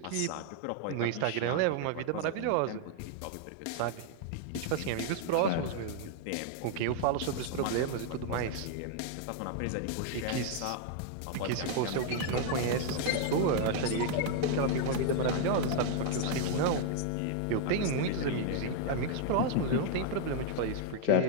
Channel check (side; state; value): both; different; correlation 0.00